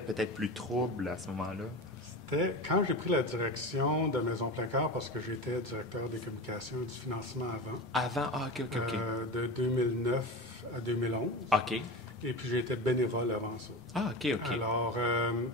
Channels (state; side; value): normal; both; correlation 0.27